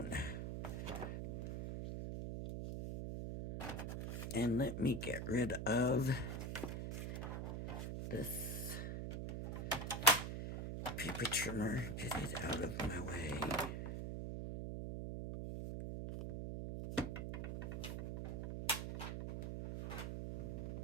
And let me get rid of this paper trimmer. Get it out of my way.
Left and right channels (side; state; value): right; noise; hum, 3 dB below the sound